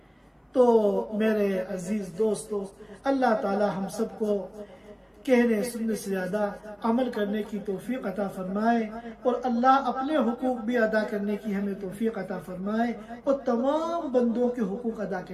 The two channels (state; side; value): identical; both; correlation 1.00